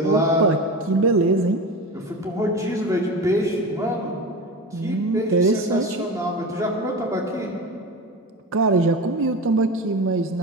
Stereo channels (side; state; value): both; normal; correlation 0.27